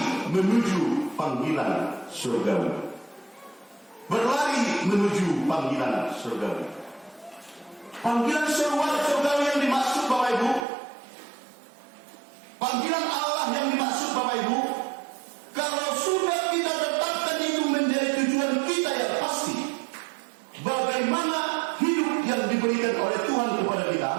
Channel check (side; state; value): left; drops out; at 10.7 s